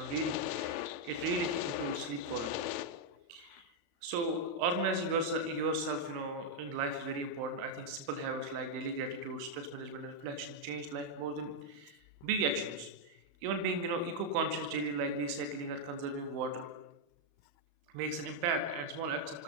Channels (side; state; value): left; late; 35 ms